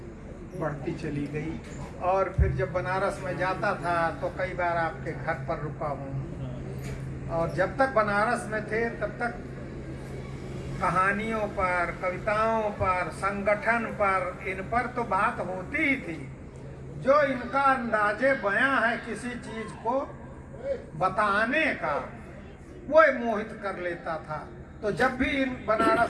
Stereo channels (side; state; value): both; identical; correlation 1.00